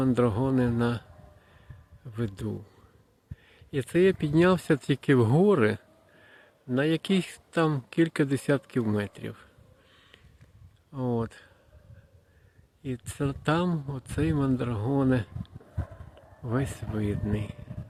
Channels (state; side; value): identical; both; correlation 1.00